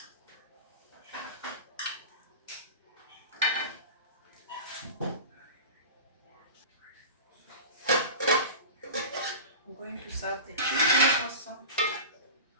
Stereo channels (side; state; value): both; inverted; correlation -0.31